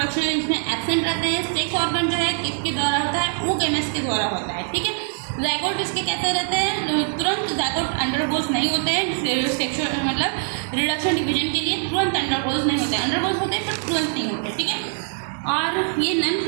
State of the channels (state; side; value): silent; left; 55 dB below the other